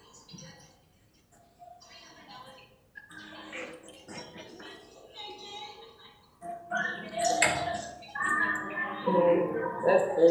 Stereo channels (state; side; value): identical; both; correlation 1.00